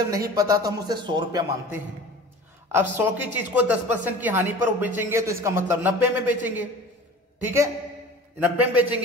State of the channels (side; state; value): both; normal; correlation 0.40